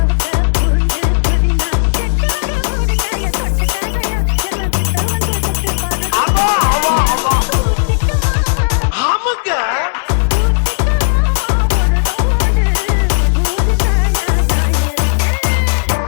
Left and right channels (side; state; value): right; silent; digital silence